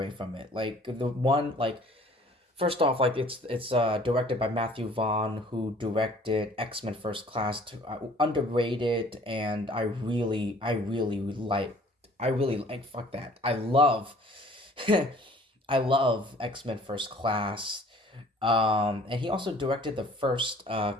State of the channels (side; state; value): both; normal; correlation 0.53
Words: from it. Like the one, like first off, like it's directed by Matthew Vaughn, who directed X-Men First Class, underrated, and I really like fuck that. I love I love X-Men First Class. And he also directed the first